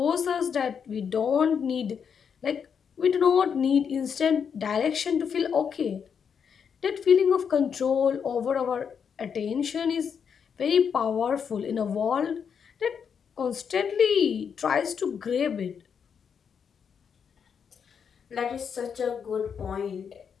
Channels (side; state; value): right; quieter; 7.0 dB